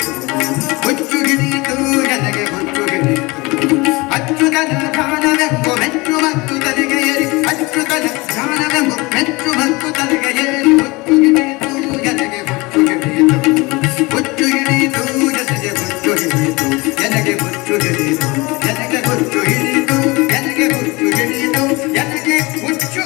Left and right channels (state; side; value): quieter; right; 24.0 dB